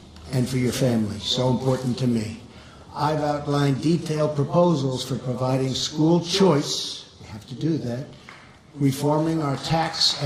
and for your family, so important to me. I've outlined detailed proposals for providing school choice, we have to do that, reforming our tax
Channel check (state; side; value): identical; both; correlation 1.00